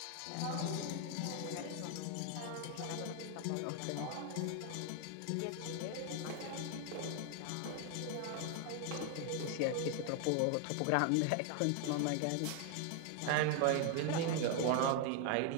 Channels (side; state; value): both; different; correlation 0.01